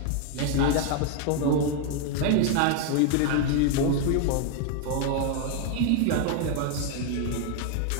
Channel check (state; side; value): different; both; correlation 0.01